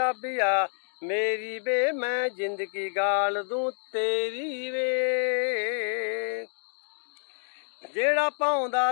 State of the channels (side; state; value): right; silent; 59 dB below the other